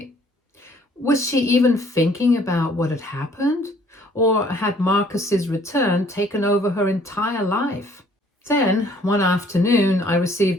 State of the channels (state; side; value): normal; both; correlation 0.59